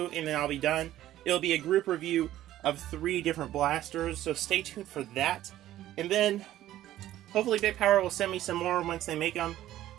and then I'll be done. It'll be a group review of 3 different blasters, so stay tuned for that. And then, hopefully Big Power will send me some more once they make them,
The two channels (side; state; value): left; quieter; 13.6 dB